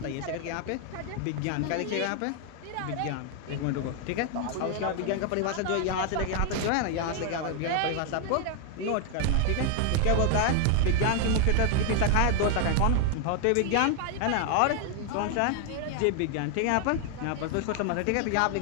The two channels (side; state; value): both; different; correlation 0.00